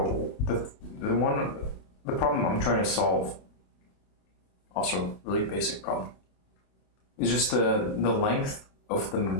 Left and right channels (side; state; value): right; late; 28 ms